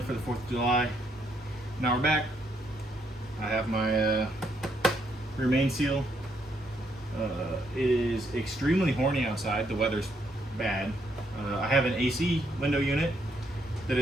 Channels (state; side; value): normal; both; correlation 0.74